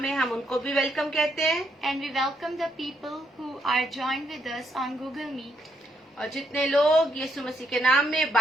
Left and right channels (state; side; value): normal; both; correlation 0.76